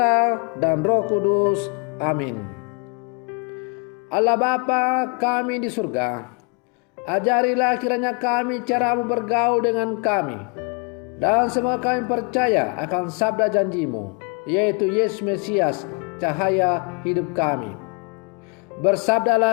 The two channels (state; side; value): quieter; right; 34.5 dB